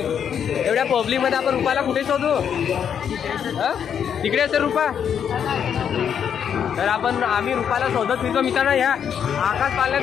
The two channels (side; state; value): right; quieter; 8.2 dB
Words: पब्लिकमध्ये आपण रुपाला कुठे शोधू. तिकडे असेल रुपा. तर आम्ही रुपाला शोधत फिरतो मित्रांनो. ह्या आकाश पाल्यात